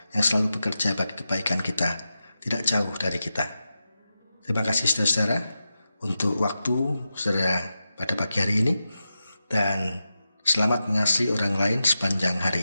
yang selalu bekerja bagi kebaikan kita, tidak jauh dari kita. Terima kasih saudara-saudara untuk waktu saudara pada pagi hari ini, dan selamat mengasihi orang lain sepanjang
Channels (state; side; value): inverted; both; correlation -0.90